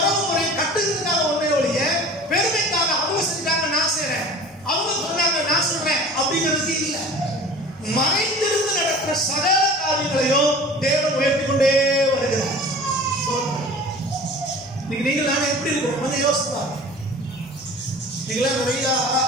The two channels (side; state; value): both; normal; correlation 0.41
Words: முறையை கட்டுறதுக்காக ஒன்றே ஒழிய பெருமைக்காக அவங்க செஞ்சாங்க நான் செய்றேன், அவங்க சொன்னாங்க நான் சொல்றேன் அப்படிங்கிறது இல்ல. மறைந்திருந்து நடக்கிற சகல காரியங்களையும் தேவன் உயர்த்தி கொண்டே வருகிறார். நீங்கள் நான் எப்படி இருக்கோம் கொஞ்சம் யோசிப்பா. நீங்களாம் நிறைய